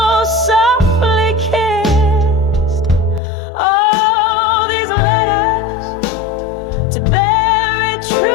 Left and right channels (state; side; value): drops out; right; at 3.2 s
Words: softly kissed. Oh, these letters to bury